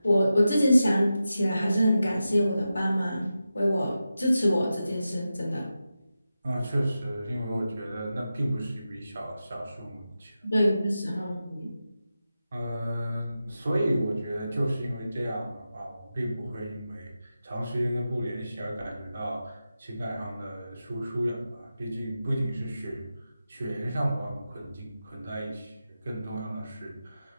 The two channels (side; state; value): both; inverted; correlation -0.91